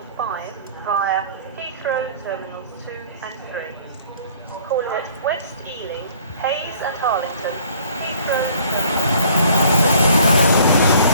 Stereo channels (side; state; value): both; inverted; correlation -0.55